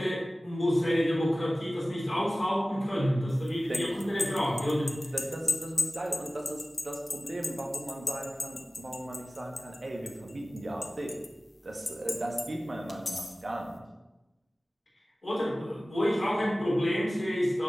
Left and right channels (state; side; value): normal; both; correlation 0.97